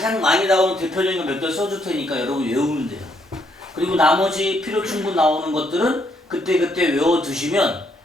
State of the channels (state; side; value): normal; both; correlation 0.73